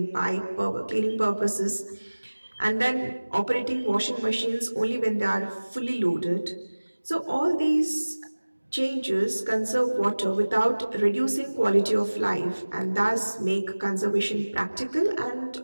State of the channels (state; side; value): inverted; both; correlation -1.00